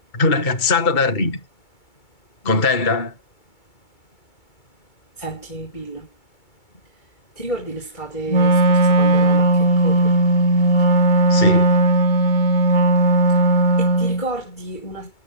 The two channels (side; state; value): right; late; 2.3 ms